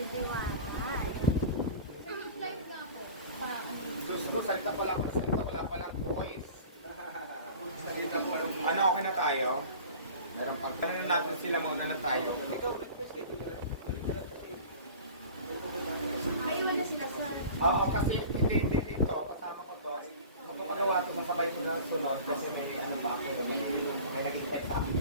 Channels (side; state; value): both; inverted; correlation -0.40